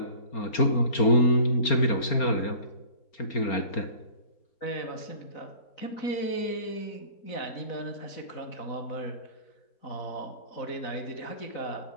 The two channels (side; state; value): right; late; 4.3 ms